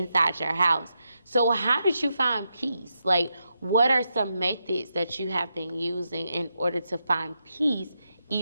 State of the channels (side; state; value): both; inverted; correlation -0.85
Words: your house. So how did you find peace? Like, what are some methods that you have been using in order to find peace